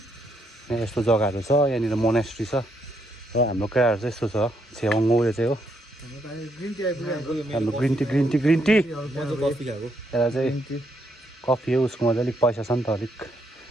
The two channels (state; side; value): normal; both; correlation 0.75